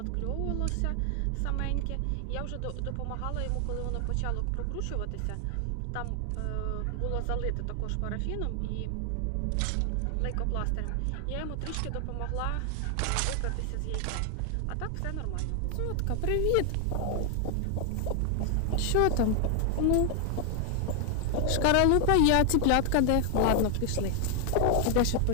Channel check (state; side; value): different; both; correlation 0.00